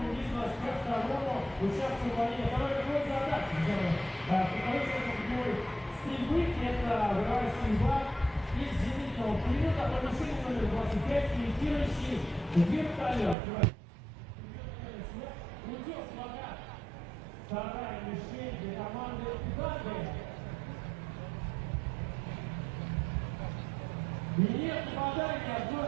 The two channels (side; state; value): left; drops out; at 13.4 s